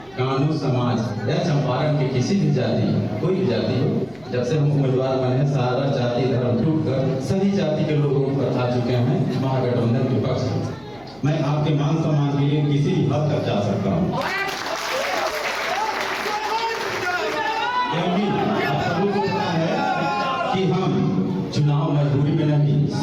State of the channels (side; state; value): right; noise; hum, 27 dB below the sound